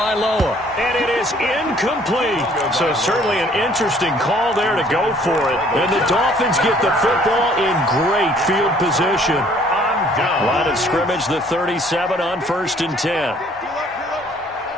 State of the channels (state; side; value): normal; both; correlation 0.59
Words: and it is incomplete. So certainly an interesting call there to go for it. And the Dolphins get the football in great field position. Line of scrimmage, the 37 on 1st and 10.